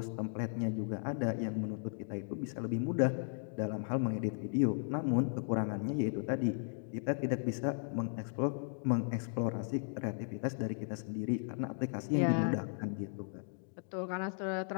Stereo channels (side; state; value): right; silent; digital silence